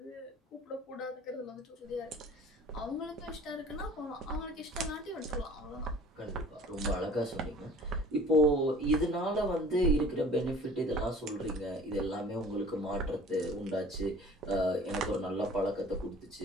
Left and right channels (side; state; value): both; normal; correlation 0.47